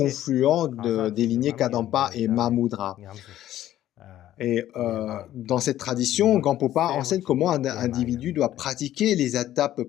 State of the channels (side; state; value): right; quieter; 13.0 dB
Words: des lignées Kadampa et Mahamudra. Et dans cette tradition, Gampopa enseigne comment un individu doit pratiquer les étapes